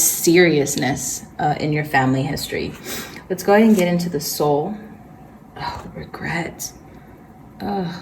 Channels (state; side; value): identical; both; correlation 1.00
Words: in your family history. Let's go ahead and get into the soul. Oh, regret. Oh,